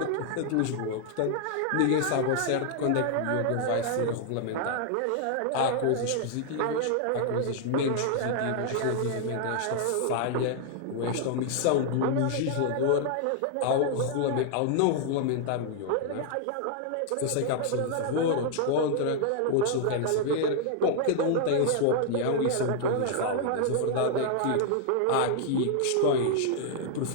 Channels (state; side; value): different; both; correlation 0.00